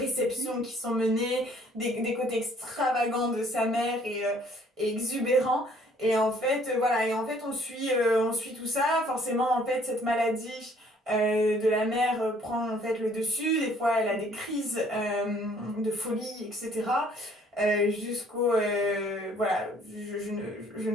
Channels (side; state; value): both; normal; correlation 0.60